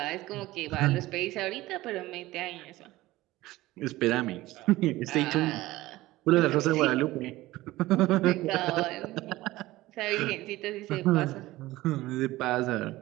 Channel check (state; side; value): quieter; left; 17.8 dB